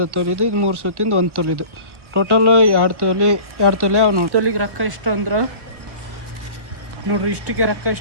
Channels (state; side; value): late; left; 1.1 ms